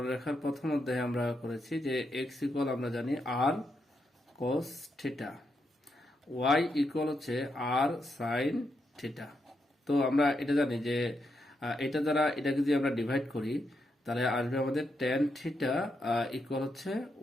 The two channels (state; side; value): normal; both; correlation 0.82